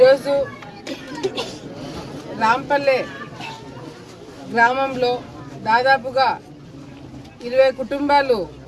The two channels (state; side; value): identical; both; correlation 1.00